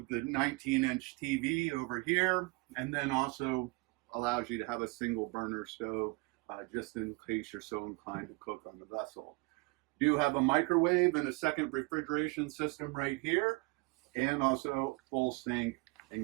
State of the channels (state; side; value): quieter; left; 26.3 dB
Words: the 19-inch TV over here, and then also allows you to have a single burner stove just in case you're so inclined to cook on the vessel. You have a microwave and a second refrigeration system right here, and also full sink